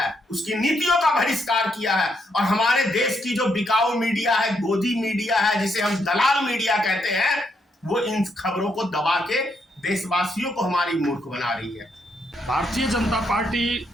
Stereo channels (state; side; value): normal; both; correlation 0.77